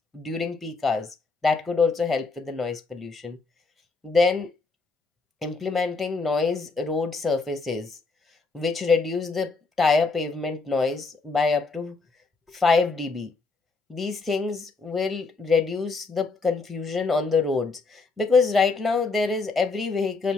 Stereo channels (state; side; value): quieter; right; 4.0 dB